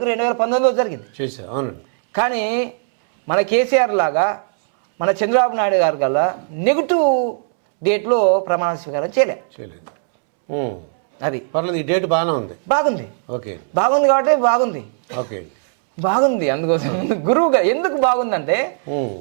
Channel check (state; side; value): silent; left; 67 dB below the other